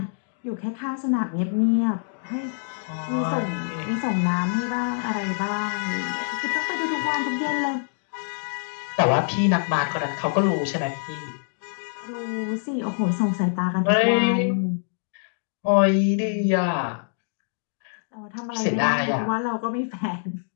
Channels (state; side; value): silent; right; digital silence